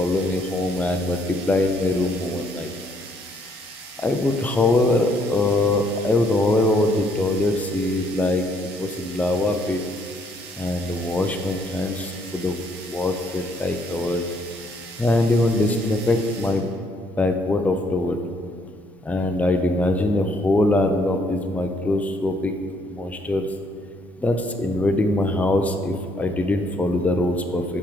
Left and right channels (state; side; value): normal; both; correlation 0.68